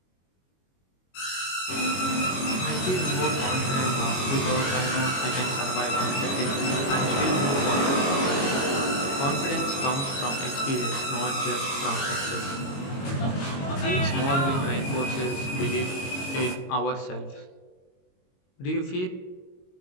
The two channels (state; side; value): late; right; 22 ms